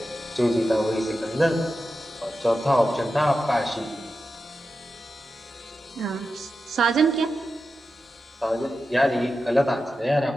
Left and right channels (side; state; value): both; normal; correlation 0.91